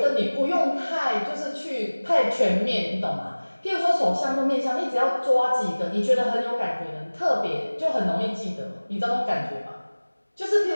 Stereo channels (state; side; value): inverted; both; correlation -1.00